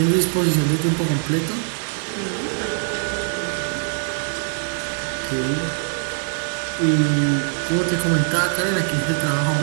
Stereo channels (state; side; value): silent; left; digital silence